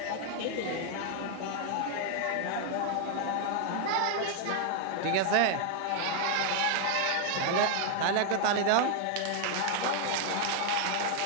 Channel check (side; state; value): both; different; correlation 0.00